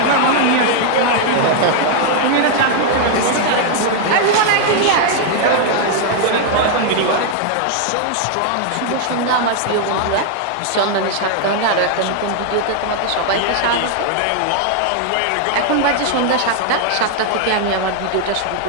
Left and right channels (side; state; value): both; different; correlation 0.00